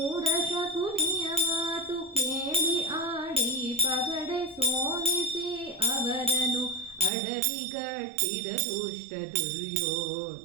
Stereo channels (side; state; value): left; drops out; at 7.1 s